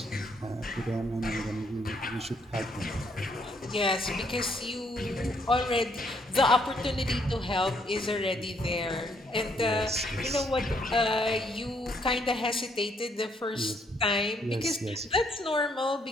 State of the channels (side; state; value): both; normal; correlation 0.70